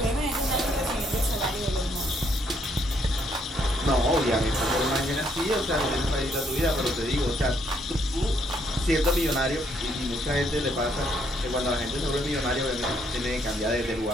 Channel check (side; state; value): both; normal; correlation 0.71